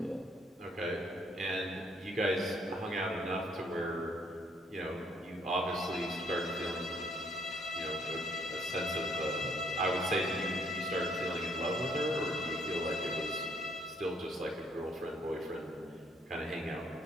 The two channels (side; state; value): both; normal; correlation 0.66